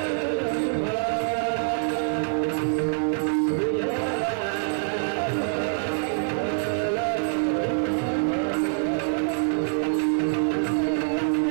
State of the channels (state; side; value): silent; left; 59 dB below the other